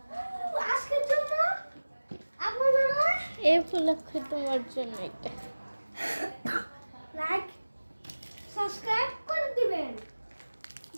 আজকের জন্য আপনারা এই উপলক্ষে তোমার জন্য একটা লাইক সাবস্ক্রাইব করে দিবেন।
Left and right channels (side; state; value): both; inverted; correlation -1.00